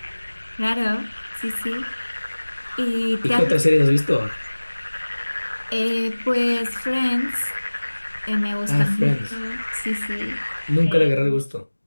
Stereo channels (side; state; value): both; inverted; correlation -1.00